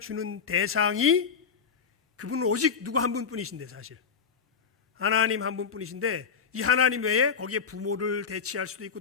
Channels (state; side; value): quieter; right; 6.2 dB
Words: 주는 대상이 그분은 오직 누구 한 분뿐이신데, 사실 하나님 한 분뿐이신데, 이 하나님 외에 거기에 부모를 대치할 수도 있고,